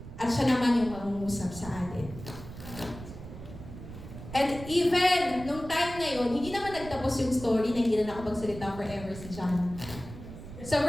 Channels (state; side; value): noise; right; rumble, 13 dB below the sound